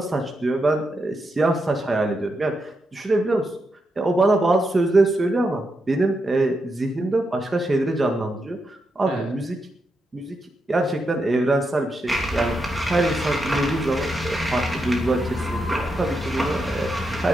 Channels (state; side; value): normal; both; correlation 0.84